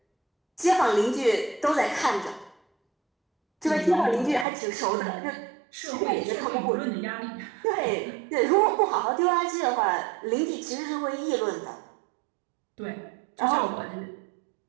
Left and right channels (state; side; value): drops out; left; at 4.5 s